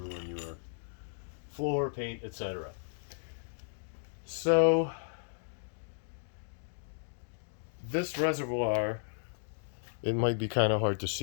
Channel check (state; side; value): silent; right; digital silence